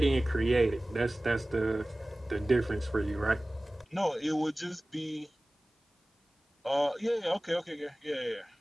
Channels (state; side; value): normal; both; correlation 0.98